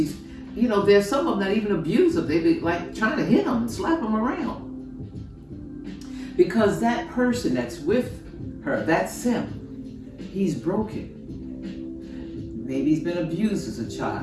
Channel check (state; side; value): identical; both; correlation 1.00